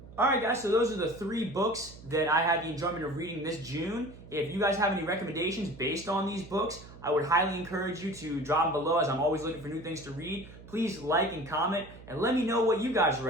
Alright guys, so those are the 3 books that I had the enjoyment of reading this June. If you guys have any recommendations based on these books, I would highly encourage you to drop them below, as I'm always looking for new things to read. Please like and comment, and let me know what you guys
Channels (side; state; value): right; noise; hum, 18 dB below the sound